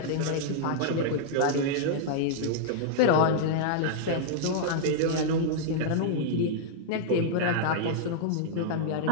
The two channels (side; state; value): both; different; correlation -0.01